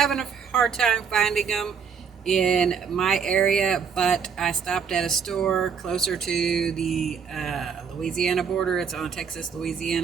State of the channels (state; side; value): quieter; left; 6.7 dB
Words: a hard time finding them in my area, but I stopped at a store closer to the Louisiana border. It's on the